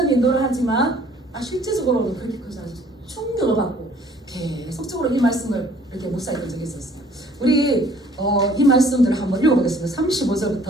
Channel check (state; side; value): normal; both; correlation 0.57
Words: 인도하지만 실제적으로는 그렇게 크지 않아서 충격을 받고 계속적으로 이 말씀을 이렇게 묵상했던 적이 있었어요. 우리 이 말씀들을 한번 읽어보겠습니다.